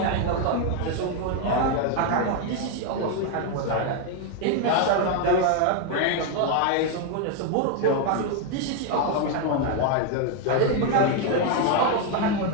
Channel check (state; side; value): different; both; correlation 0.01